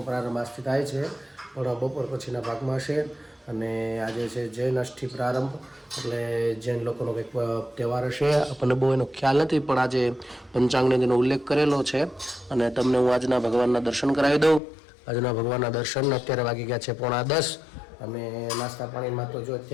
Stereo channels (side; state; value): right; drops out; at 14.6 s